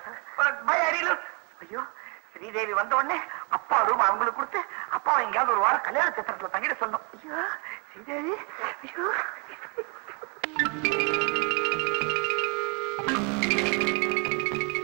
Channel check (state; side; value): quieter; left; 34.5 dB